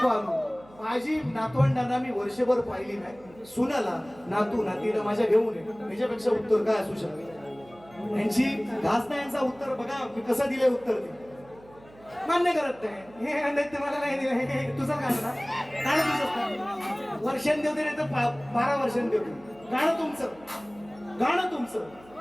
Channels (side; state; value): right; noise; hum, 24 dB below the sound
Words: आणू माझी नातवंडांना मी वर्षभर पाहिली नाही सुनाला नातू नातीला माझ्या घेऊन ये त्याच्यापेक्षा उत्तर काय असू शकते यांची घास नाही यांचा उत्तर बघा मी कसं दिले उत्तर ते मान्य करत नाही हे मला नाही दिलं तुझं काय ना गाणं तुझं वर्षां देऊ दे नाही तर 12 वर्षांनी देऊ गाणं तुमचं